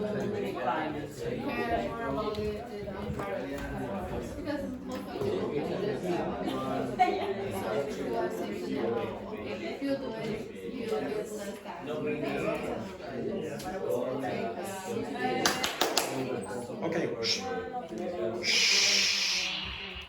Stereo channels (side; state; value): both; identical; correlation 1.00